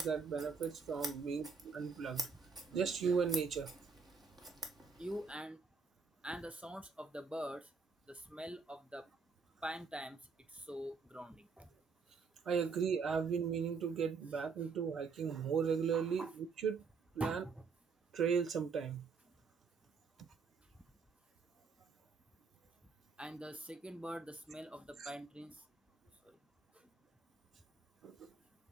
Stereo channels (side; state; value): left; quieter; 5.1 dB